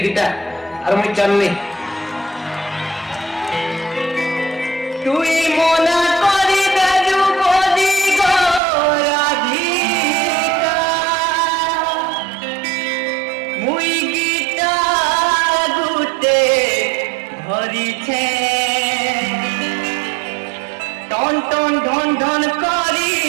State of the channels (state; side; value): drops out; left; at 8.6 s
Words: গিটা আর মুই চালনি তুই মনা করি দাজু বলি গো রাধিকা মুই গিটা গুতে ধরিছে টন টন ঢন ঢন করি